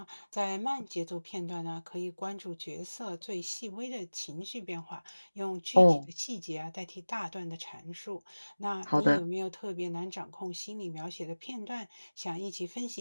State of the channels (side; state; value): both; inverted; correlation -1.00